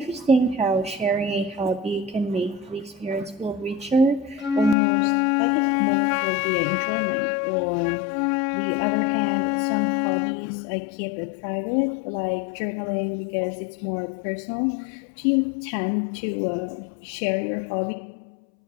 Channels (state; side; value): drops out; right; at 4.8 s